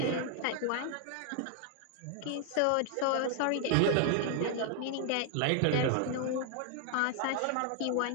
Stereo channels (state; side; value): different; both; correlation 0.00